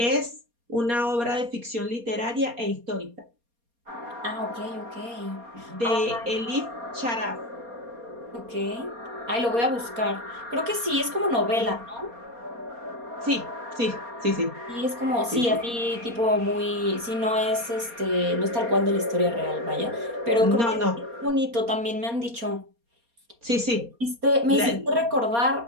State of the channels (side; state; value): left; late; 4.3 ms